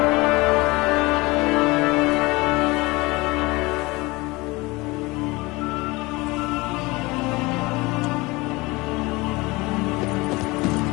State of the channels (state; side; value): quieter; right; 23.0 dB